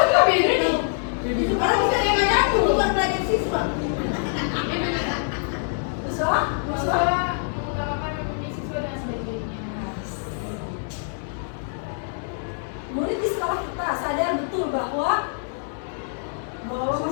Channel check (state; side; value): silent; right; digital silence